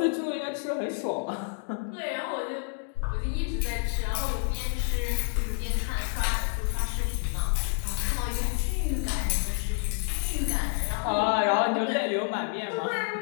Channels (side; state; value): right; silent; 59 dB below the other